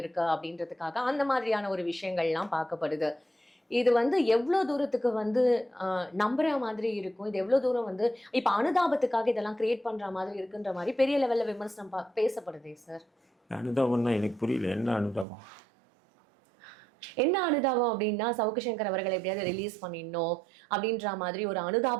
இருக்கு அப்படின்றதுக்காக அந்த மாதிரியான ஒரு விஷயங்கள்லாம் பார்க்கப்படுது. இது வந்து எவ்வளோ தூரத்துக்கு வந்து நம்புற மாதிரி இருக்கும், இது எவ்வளோ தூரம் வந்து இப்ப அனுதாபத்துக்காக இதெல்லாம் கிரியேட் பண்ற மாதிரி இருக்குன்ற மாதிரி பெரிய லெவல்ல விமர்சனம் பேசப்படுதே சார். அனுதாபம்னா எனக்கு புரியல, என்ன அனுதாபம்? என்ன அனுதாபம் அப்படின்னா, சவுக்கு சங்கர் அவர்களை எப்படியாவது ரிலீஸ் பண்ணிடணும் அப்படின்ற மாதிரி ஒரு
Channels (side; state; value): left; drops out; at 15.2 s